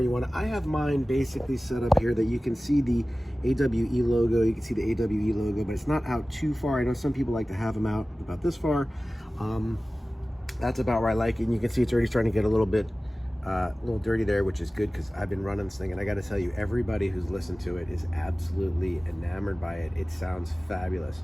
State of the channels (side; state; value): both; normal; correlation 0.97